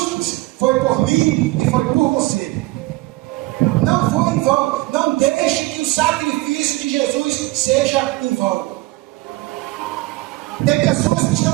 foi por mim e foi por você. Não foi em vão. Não deixe que o sacrifício de Jesus seja em vão. Tem pessoas que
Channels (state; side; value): quieter; left; 20.8 dB